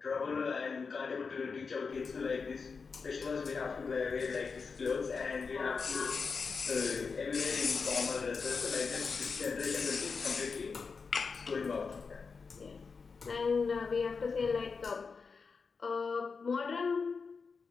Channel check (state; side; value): quieter; right; 5.0 dB